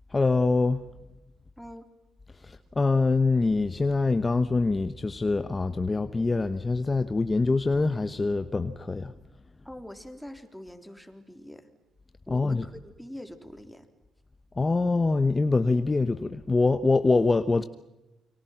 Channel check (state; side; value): quieter; right; 3.0 dB